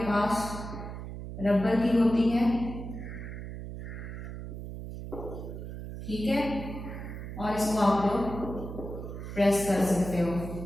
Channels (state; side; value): noise; right; hum, 8 dB below the sound